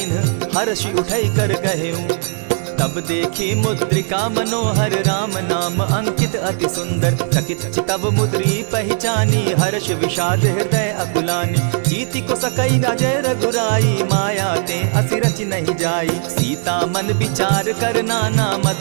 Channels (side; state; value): left; silent; digital silence